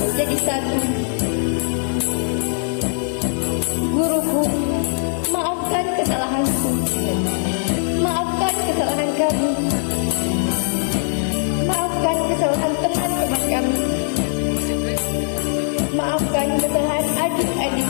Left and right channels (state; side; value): silent; right; 62 dB below the other